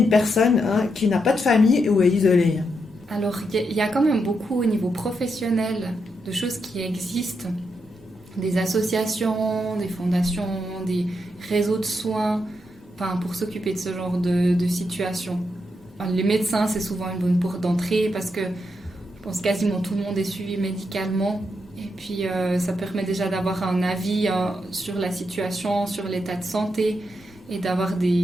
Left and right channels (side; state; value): both; normal; correlation 0.82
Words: personne qui n'a pas de famille ou est isolée? Alors, il y a quand même beaucoup au niveau professionnel de choses qui existent, des associations, des fondations, des réseaux de soins, pour s'occuper de ce genre de situation. Les médecins, c'est souvent une bonne porte d'entrée parce que je pense quasiment tout le monde est suivi médicalement. Et puis, ça permet déjà d'avoir un avis sur la situation, sur l'état de santé et d'avoir